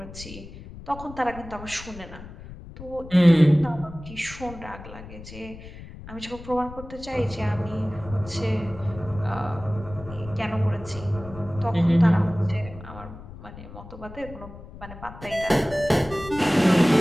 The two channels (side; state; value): left; noise; rumble, 15 dB below the sound